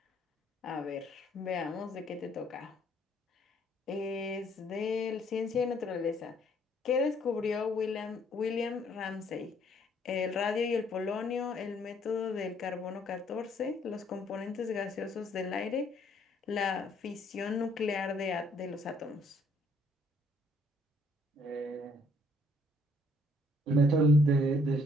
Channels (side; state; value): both; normal; correlation 0.65